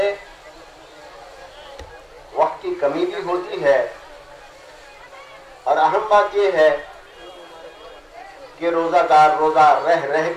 वक्त की कमी भी होती है, और अहम बात यह है कि रोजादार रोजा रह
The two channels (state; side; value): identical; both; correlation 1.00